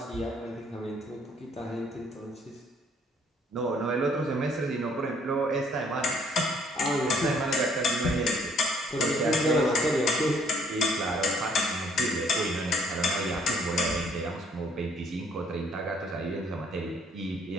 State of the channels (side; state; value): both; normal; correlation 0.63